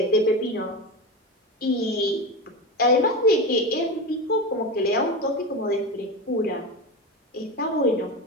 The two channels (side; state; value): both; normal; correlation 0.21